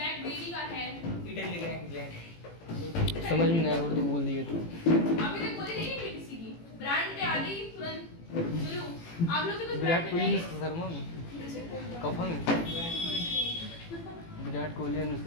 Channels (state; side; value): late; right; 18 ms